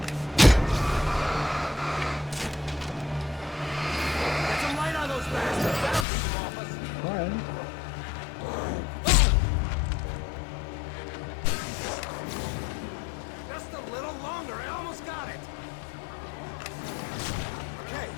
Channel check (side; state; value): right; drops out; at 6.1 s